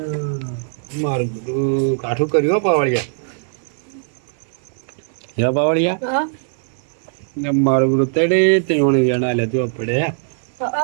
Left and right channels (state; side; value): silent; left; 55 dB below the other